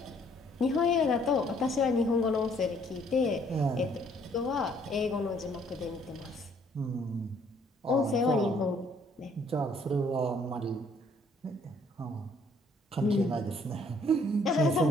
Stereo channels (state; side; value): normal; both; correlation 0.63